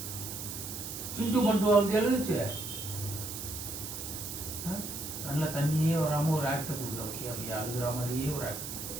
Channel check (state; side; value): noise; right; hiss, 7 dB below the sound